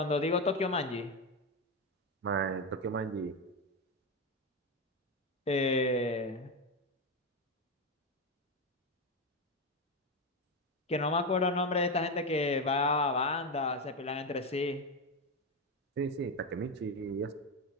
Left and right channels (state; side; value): normal; both; correlation 0.12